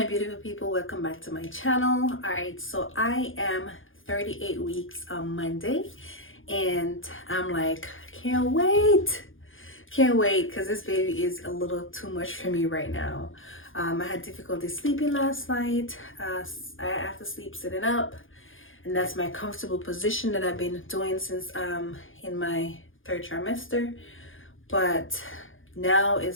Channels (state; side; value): late; right; 0.58 ms